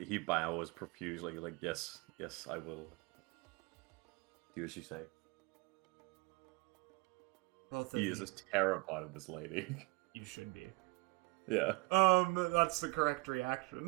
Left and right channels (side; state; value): left; quieter; 24.3 dB